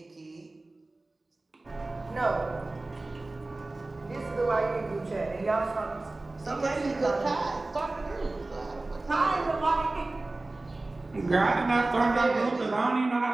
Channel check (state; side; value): quieter; left; 3.0 dB